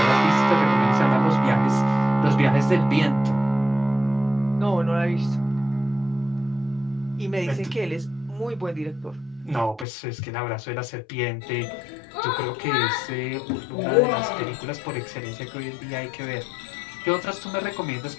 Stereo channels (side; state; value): right; drops out; at 9.9 s